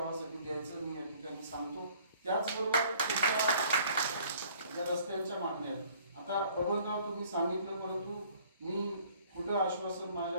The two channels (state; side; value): inverted; both; correlation -0.56